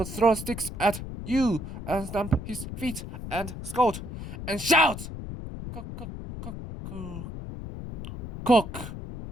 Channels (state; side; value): noise; left; rumble, 9 dB below the sound